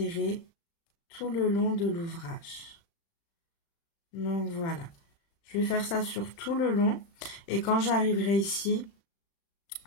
tout le long de l'ouvrage. Donc voilà, je vais faire ça sur tout le long et quand j'arriverai ici,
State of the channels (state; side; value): late; right; 36 ms